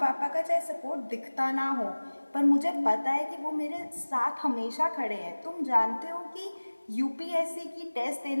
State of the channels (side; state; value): both; inverted; correlation -1.00